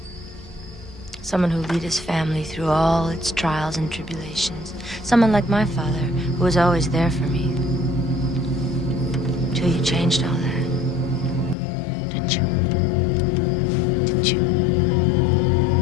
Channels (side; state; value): right; drops out; at 11.6 s